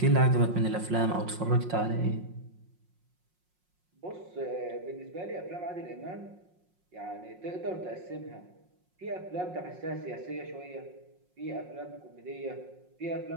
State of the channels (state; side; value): late; left; 5.5 ms